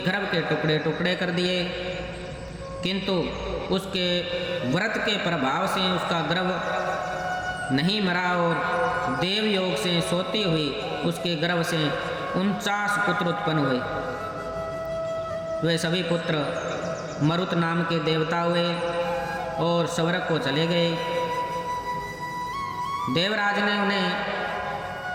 के टुकड़े टुकड़े कर दिए, किंतु उसके व्रत के प्रभाव से उसका गर्भ नहीं मरा और देव योग से सोती हुई उसके गर्भ से 49 पुत्र उत्पन्न हुए। वे सभी पुत्र मरुत नाम के देवता हुए और स्वर्ग को चले गए। देवराज ने उन्हें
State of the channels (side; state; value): both; identical; correlation 1.00